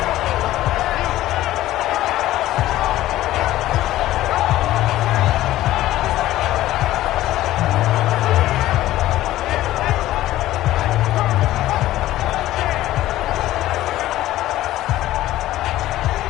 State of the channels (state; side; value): quieter; right; 15.0 dB